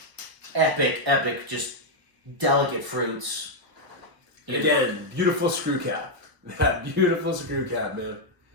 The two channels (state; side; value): late; left; 1.0 ms